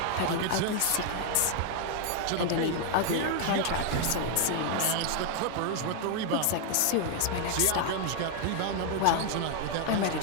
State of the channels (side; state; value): both; different; correlation 0.00